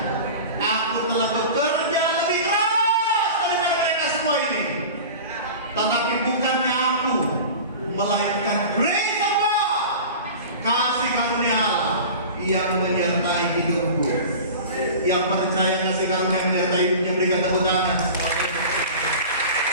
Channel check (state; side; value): inverted; both; correlation -0.36